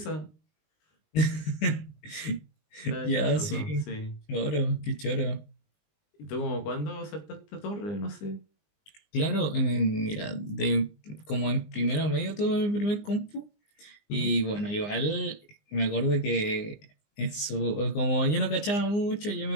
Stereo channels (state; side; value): late; right; 20 ms